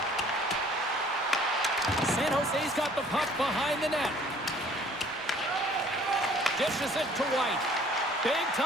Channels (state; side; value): normal; both; correlation 0.55